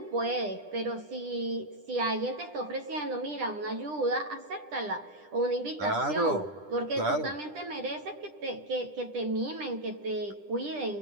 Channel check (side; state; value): left; late; 10 ms